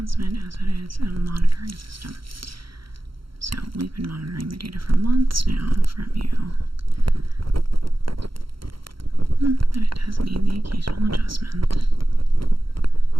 as it is a monitoring system. So, we've been monitoring the data for months now from you. But it does need the occasional adjustment.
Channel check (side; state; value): left; late; 0.74 ms